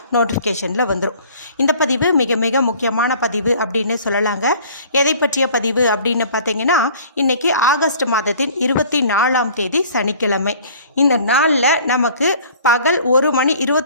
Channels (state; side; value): inverted; both; correlation -0.50